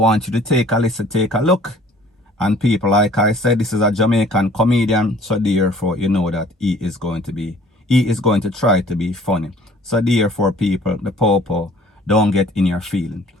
you to take a listen, take a look. And people, like I said, this is a Jamaican comedian, so therefore you know that he is going to try to be funny. So therefore people, the popo, don't get in your feeling.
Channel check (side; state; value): both; normal; correlation 0.53